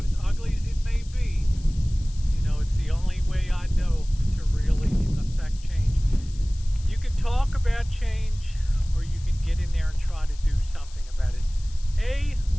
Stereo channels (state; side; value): noise; left; hiss, 22 dB below the sound